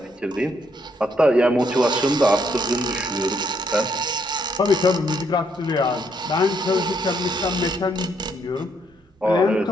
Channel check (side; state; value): both; normal; correlation 0.73